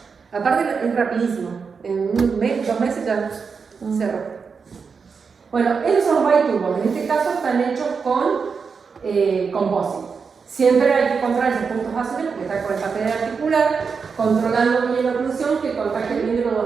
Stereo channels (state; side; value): quieter; left; 5.5 dB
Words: Aparte, es rapidísimo. En 2 meses ya cerró. Bueno, esos son los biturbos. En este caso están hechos con composite. Siempre hay que controlar esos puntos azules porque está con el papel articular, controlando bien la oclusión que contacte bien de los